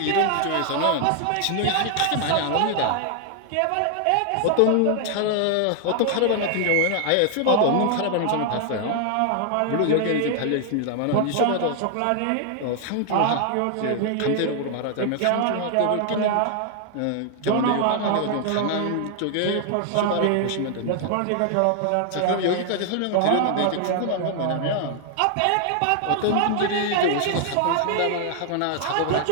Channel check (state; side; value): different; both; correlation 0.00